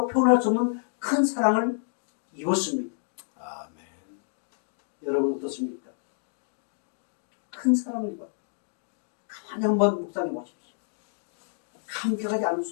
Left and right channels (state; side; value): silent; right; digital silence